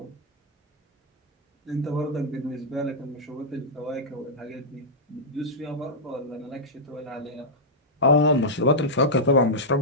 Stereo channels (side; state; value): both; normal; correlation -0.09